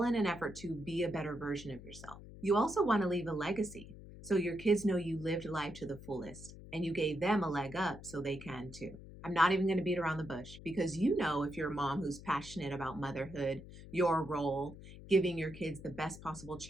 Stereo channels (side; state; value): left; noise; hum, 15 dB below the sound